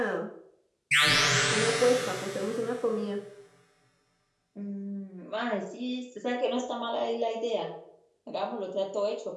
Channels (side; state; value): both; identical; correlation 1.00